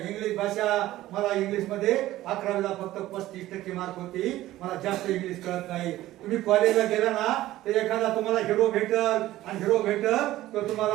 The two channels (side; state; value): left; quieter; 15.4 dB